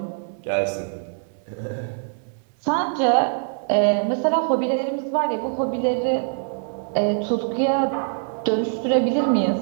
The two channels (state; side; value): silent; left; 63 dB below the other